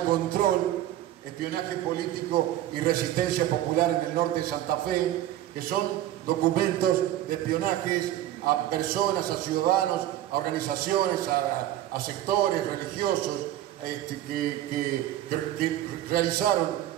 espionaje político y resistencia popular en el norte de Santa Fe, que son documentos de espionajes a personas, a ciudadanos, a organizaciones, a sectores religiosos que realizaron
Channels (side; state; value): left; quieter; 13.2 dB